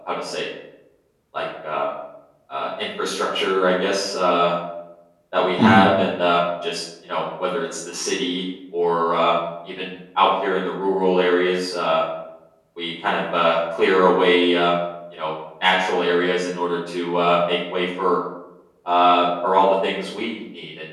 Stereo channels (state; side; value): identical; both; correlation 1.00